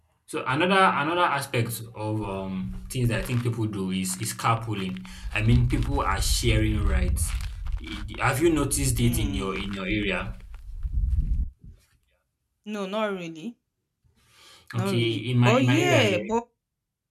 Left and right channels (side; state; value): both; identical; correlation 1.00